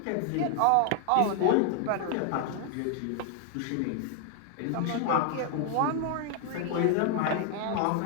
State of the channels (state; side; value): different; both; correlation 0.00